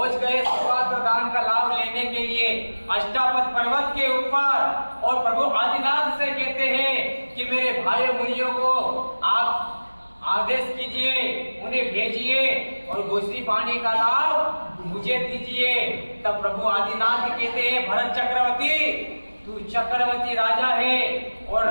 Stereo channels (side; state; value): both; inverted; correlation -1.00